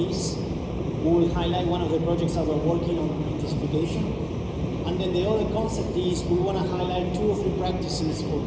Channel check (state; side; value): identical; both; correlation 1.00